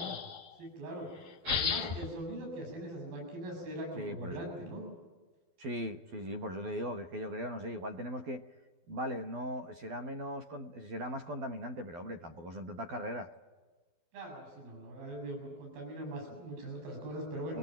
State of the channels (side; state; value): left; late; 12 ms